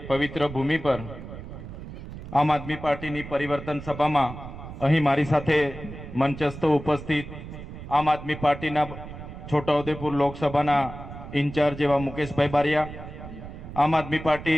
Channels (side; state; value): right; noise; rumble, 12 dB below the sound